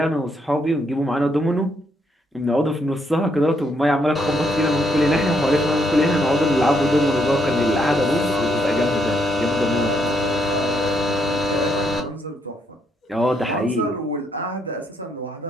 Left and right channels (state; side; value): normal; both; correlation 0.75